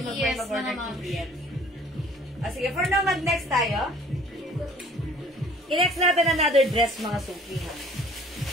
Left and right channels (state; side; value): normal; both; correlation 0.53